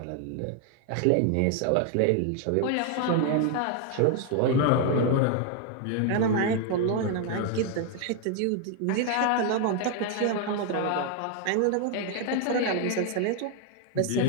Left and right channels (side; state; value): both; different; correlation 0.00